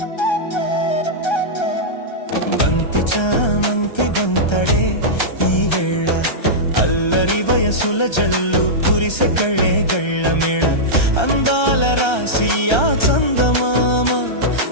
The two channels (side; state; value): right; late; 1.3 ms